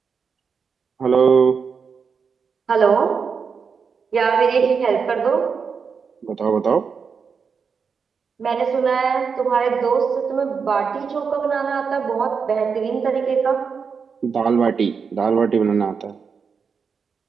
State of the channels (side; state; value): left; quieter; 5.8 dB